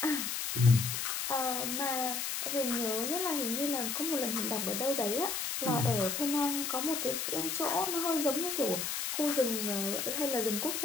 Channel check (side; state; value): left; noise; hiss, 2 dB below the sound